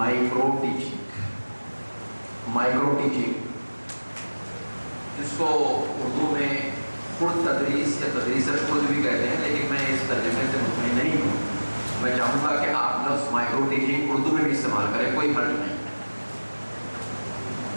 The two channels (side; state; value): both; inverted; correlation -1.00